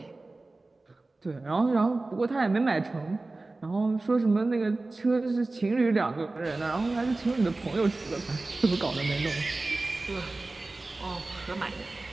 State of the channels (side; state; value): left; quieter; 3.2 dB